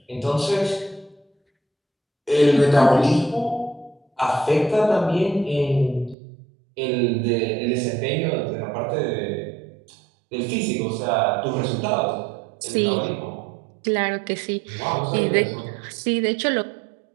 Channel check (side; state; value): left; drops out; at 6.2 s